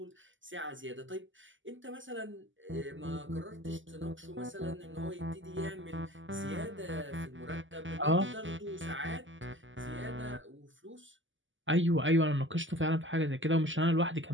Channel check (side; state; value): left; late; 0.55 ms